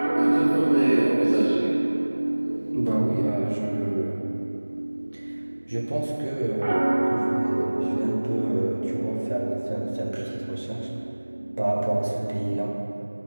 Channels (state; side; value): inverted; both; correlation -1.00